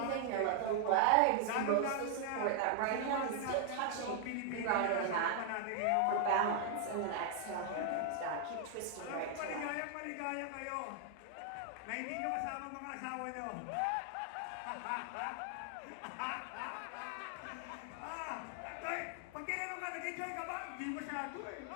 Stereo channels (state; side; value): different; both; correlation 0.00